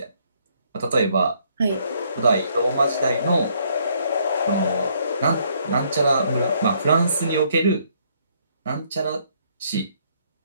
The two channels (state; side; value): inverted; both; correlation -0.68